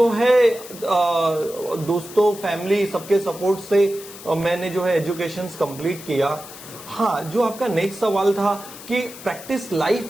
है दोस्तों, फैमिली, सबके सपोर्ट से मैंने जो है एजुकेशन कंप्लीट किया। हाँ, जो आपका नेक्स्ट सवाल था कि प्रैक्टिस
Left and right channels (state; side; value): noise; left; hiss, 16 dB below the sound